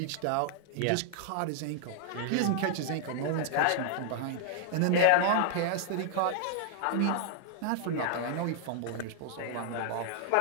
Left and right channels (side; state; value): both; different; correlation 0.00